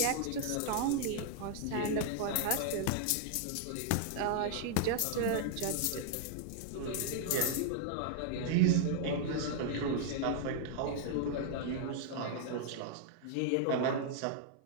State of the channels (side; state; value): both; different; correlation -0.01